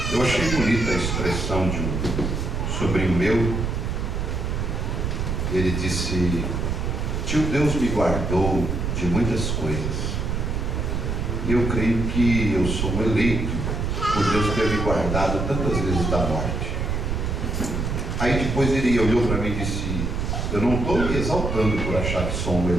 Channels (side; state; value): right; noise; rumble, 1 dB below the sound